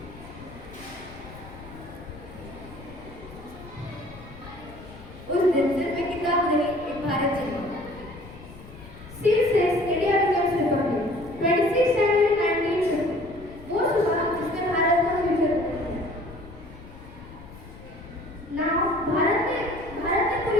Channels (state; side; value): noise; left; rumble, 17 dB below the sound